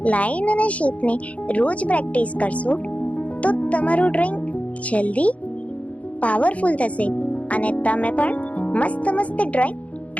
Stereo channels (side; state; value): right; late; 0.066 ms